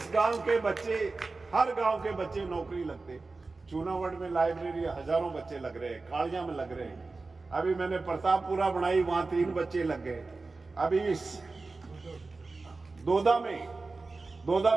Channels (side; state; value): left; quieter; 3.7 dB